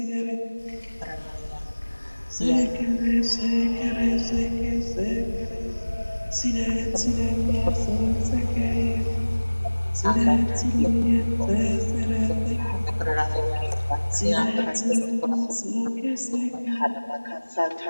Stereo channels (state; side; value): inverted; both; correlation -1.00